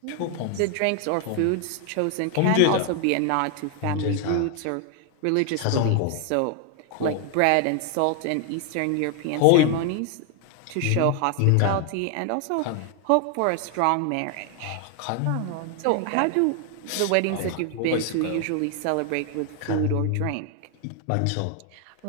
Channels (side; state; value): both; different; correlation 0.00